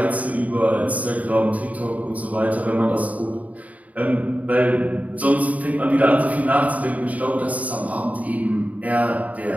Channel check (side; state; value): left; late; 0.071 ms